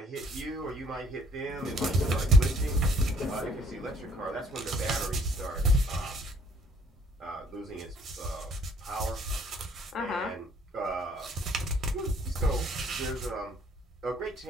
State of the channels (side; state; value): both; normal; correlation 0.60